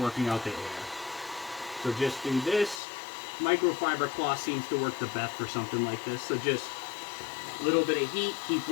out the air. So just do this. Microfiber cloth seems to work the best for something like this. So just a little bit of heat, keep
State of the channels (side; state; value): right; drops out; at 2.8 s